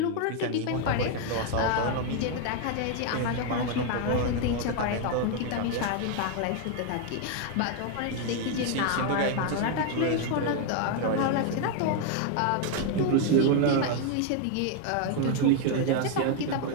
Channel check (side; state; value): both; different; correlation 0.00